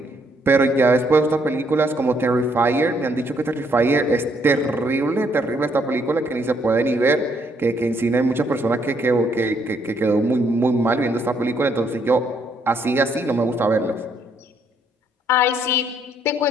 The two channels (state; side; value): normal; both; correlation 0.70